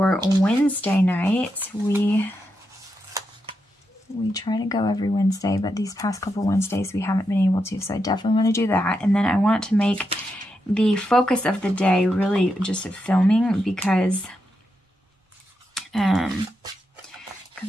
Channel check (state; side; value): normal; both; correlation 0.85